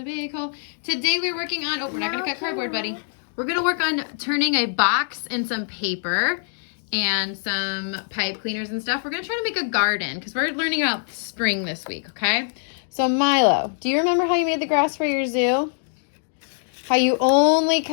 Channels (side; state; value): right; silent; digital silence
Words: big hole. Today we're working on, we're not gonna cut cardboard, buddy. We're gonna work on turning a box and some paper and some pipe cleaners and stuff. We're gonna try to make a garden because we're learning about spring this week, okay? So Milo, do you remember how you made the grass for your zoo? How you only